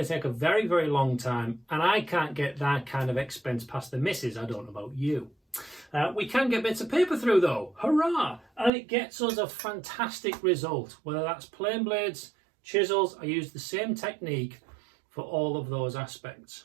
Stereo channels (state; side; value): drops out; left; at 8.7 s